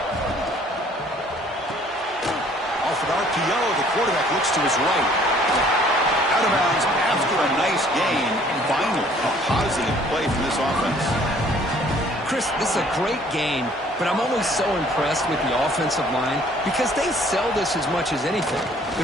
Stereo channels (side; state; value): both; normal; correlation 0.58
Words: Off an RPO, the quarterback looks to his right. Out of bounds after a nice gain. Finally, a positive play from this offense. Chris, this is a great game, but I'm always so impressed with the offensive line because they sell this as much as anything.